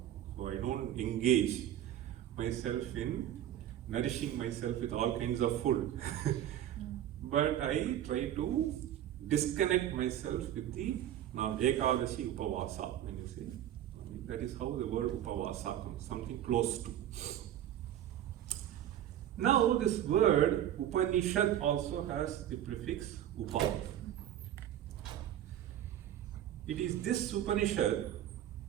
So I don't engage myself in nourishing myself with all kinds of food. but I try to disconnect myself with the Ekadashi Upavasa, when you say. That is how the word Upavasa comes, something close to. Now this word Upanishad also has the prefix Upa. It is this Upanishad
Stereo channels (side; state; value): left; quieter; 11.5 dB